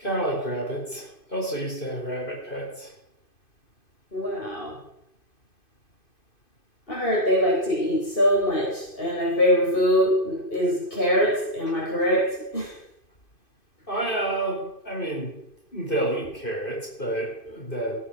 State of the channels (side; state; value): right; late; 2.5 ms